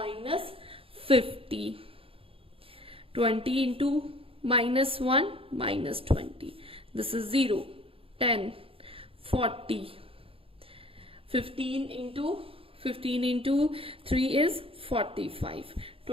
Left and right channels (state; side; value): late; left; 0.27 ms